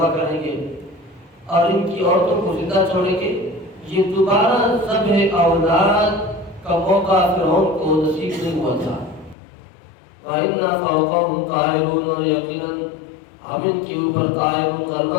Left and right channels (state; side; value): drops out; right; at 9.3 s